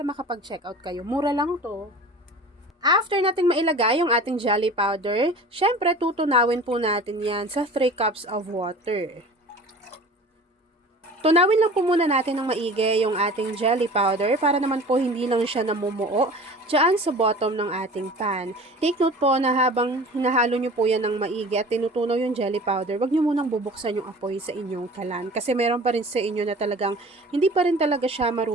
makapag-check out kayo. Mura lang to. After nating mailagay yung ating jelly powder, syempre tutunawin po natin yan sa 3 cups of water. Tunawin lang po muna natin ng maigi yung ating jelly powder para naman po hindi lang siya namumuo dyan sa bottom ng ating pan. Take note po na habang hinahalo nyo po yan ng maigi at tinutunaw yung jelly powder, wag nyo munang bubuksan yung apoy sa inyong kalan. Kasi meron pa rin sa inyo na talagang hindi pa rin talaga siya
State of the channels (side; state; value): both; normal; correlation 0.41